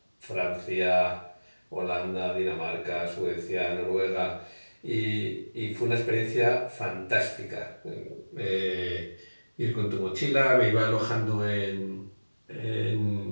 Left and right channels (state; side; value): inverted; both; correlation -1.00